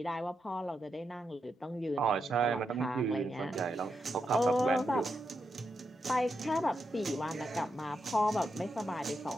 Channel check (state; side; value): normal; both; correlation 0.84